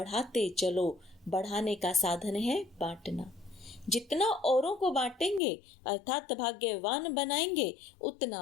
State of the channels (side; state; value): right; drops out; at 5.4 s